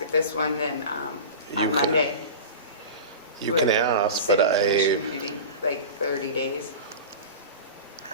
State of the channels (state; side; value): inverted; both; correlation -0.31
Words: at this one, then You on can- Monday. You we can have a ask, but city commission meeting, like 30 days.